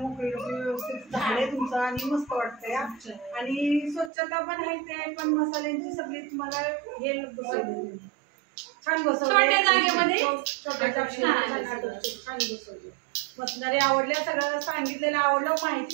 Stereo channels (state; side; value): drops out; left; at 4.1 s